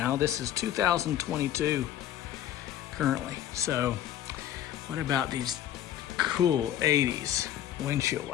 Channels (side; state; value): right; quieter; 11.6 dB